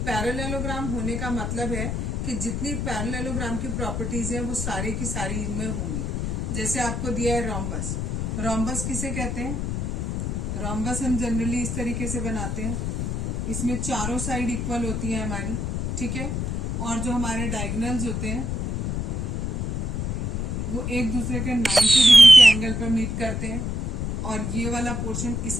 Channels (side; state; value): left; noise; rumble, 2 dB below the sound